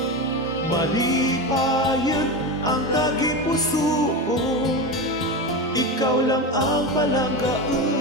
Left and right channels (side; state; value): both; normal; correlation 0.20